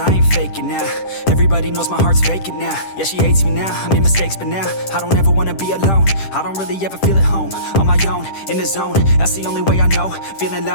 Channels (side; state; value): right; late; 10 ms